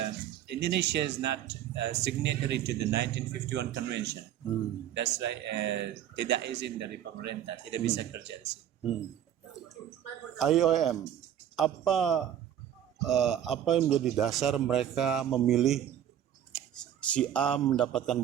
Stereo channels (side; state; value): left; quieter; 10.5 dB